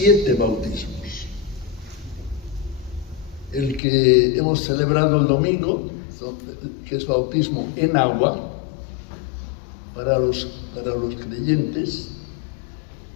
bautismos. El que hemos celebrado el domingo, que es bautismo en agua, para los creyentes,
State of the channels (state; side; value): drops out; right; at 3.8 s